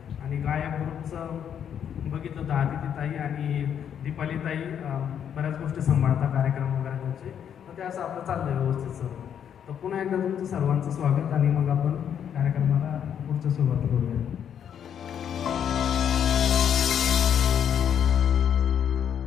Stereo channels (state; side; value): quieter; right; 8.7 dB